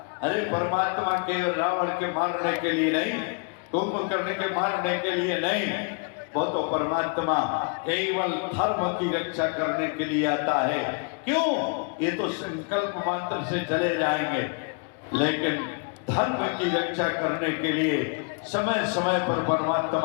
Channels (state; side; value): quieter; right; 38.6 dB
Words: अरे परमात्मा केवल रावण के मारने के लिए नहीं, कुंभकर्ण के मारने के लिए नहीं, वो तो परमात्मा केवल धर्म की रक्षा करने के लिए आता है। क्यों? ये तो संकल्प मात्र से चले जाएंगे, लेकिन धर्म की रक्षा करने के लिए समय समय पर